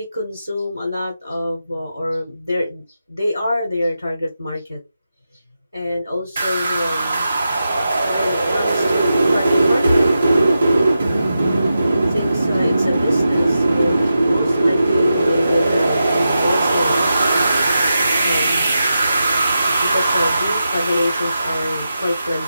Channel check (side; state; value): both; inverted; correlation -0.89